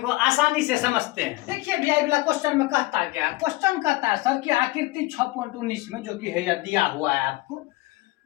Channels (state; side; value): quieter; right; 20.2 dB